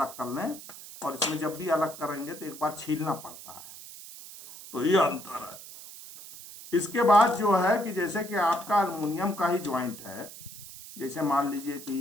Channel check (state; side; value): noise; right; hiss, 15 dB below the sound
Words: कर लें, और इसमें जब भी अलग करेंगे तो एक बार छीलना पड़ता है। तो ये अंतर है। इसके बाद जो है कि जैसे कि आपका अल्युमिनियम का ही ज्वाइंट है, जैसे मान लीजिए कि